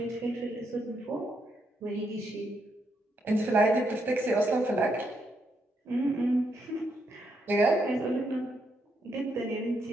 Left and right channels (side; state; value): both; normal; correlation 0.78